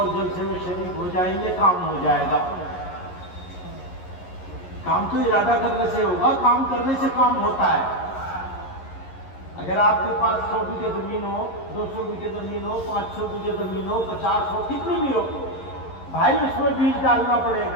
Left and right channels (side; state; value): right; late; 11 ms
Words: جلسے میں شریک ہو جائیں گے، کام ہو جائے گا۔ کام تو ارادہ کرنے سے ہوگا، کام کرنے سے کام ہوتا ہے۔ اگر آپ کے پاس 100 بیگھے زمین ہو، 200 بیگھے زمین ہو، 500 بیگھے زمین ہو، 50 ہو، کتنی بھی ہو، بھائی اس میں بیج ڈالنا پڑے